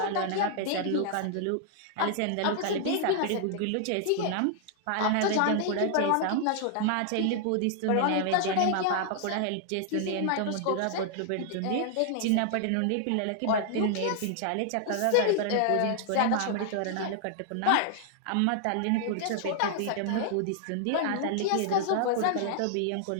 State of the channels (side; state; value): both; different; correlation 0.00